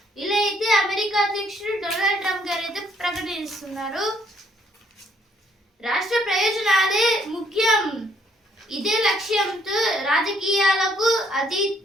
ఇలా అయితే అమెరికా అధ్యక్షుడు డొనాల్డ్ ట్రంప్ గారు అయితే ప్రకటిస్తున్నారు. రాష్ట్ర ప్రయోజనాలే ముఖ్యం, ఇదే లక్ష్యంతో రాజకీయాలకు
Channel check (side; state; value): both; normal; correlation 0.67